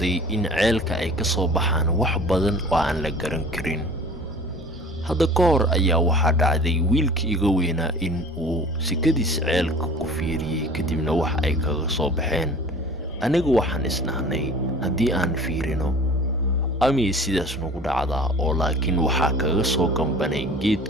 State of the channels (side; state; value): both; normal; correlation 0.44